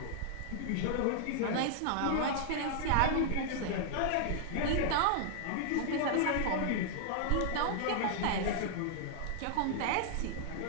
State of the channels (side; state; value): both; different; correlation -0.01